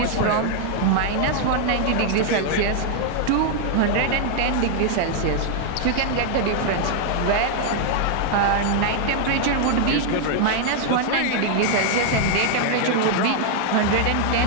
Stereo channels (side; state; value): both; different; correlation 0.00